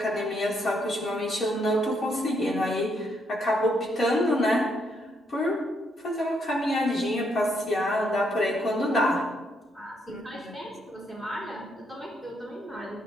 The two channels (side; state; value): both; normal; correlation 0.75